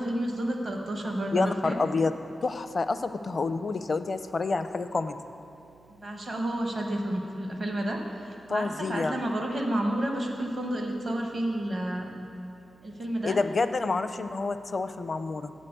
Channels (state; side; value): noise; right; hum, 27 dB below the sound